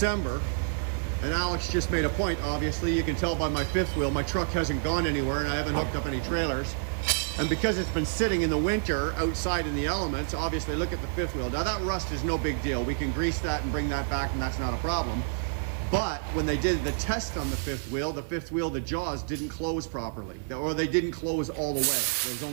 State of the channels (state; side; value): silent; left; 59 dB below the other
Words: and Alex just made a point. Obviously, you can tell by my fifth wheel, my truck hasn't gone anywhere and I haven't hooked up any trailers. And because it's been sitting in the winter outside in the elements, obviously look at the fifth wheel. Now that rust is no big deal. We can grease that and bring that back and that's not a problem. But when they did the test on the fifth wheel, the jaws didn't close properly, or they didn't close all the way. There was